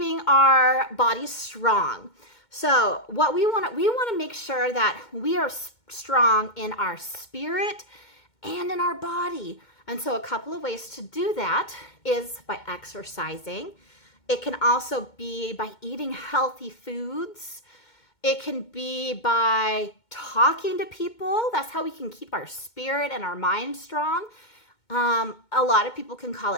our bodies strong. So what we want to make sure that we are strong in our spirit and in our body. And so a couple of ways to do that is by exercising. It can also be by eating healthy foods. It can be by talking to people. That's how we can keep our spirit and our mind strong. A lot of people can call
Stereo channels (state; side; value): late; right; 2.2 ms